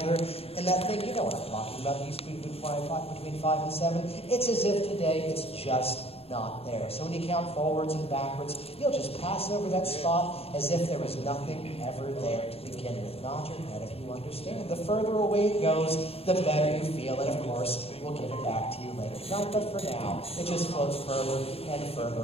and that thing, you know what I'm talking about, used to be between 5 and 7, it's as if today it's just not there. So when you count forwards and backwards, you'll just pass over that spot as if there was nothing ever there to begin with. Nod your head if you understand. The further away it goes, the better you feel, and of course, we'll give it back to you later tonight, but for now, it just floats further and further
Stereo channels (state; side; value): late; right; 0.28 ms